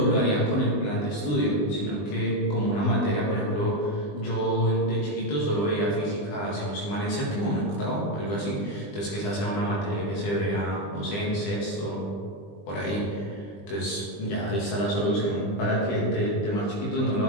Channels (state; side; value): late; right; 20 ms